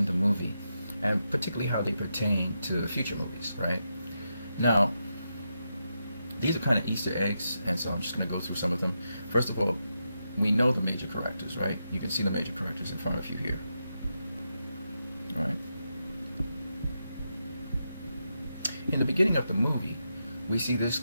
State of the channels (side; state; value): both; inverted; correlation -0.86